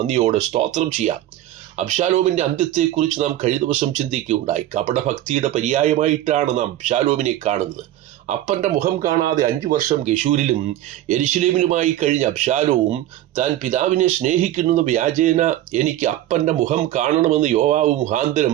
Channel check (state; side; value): quieter; left; 13.7 dB